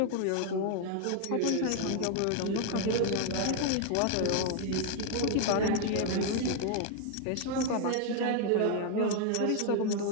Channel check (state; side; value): different; both; correlation 0.01